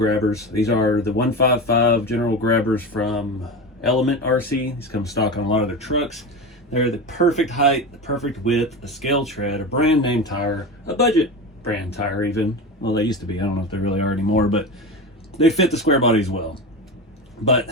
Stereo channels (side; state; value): both; normal; correlation 0.24